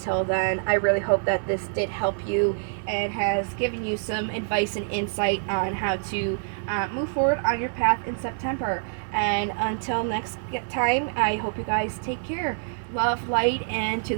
then, I really hope that this did help you and has given you some advice and insight on how to move forward on your path in September. And until next time, I hope you guys take care. Love, light, and to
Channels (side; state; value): left; silent; digital silence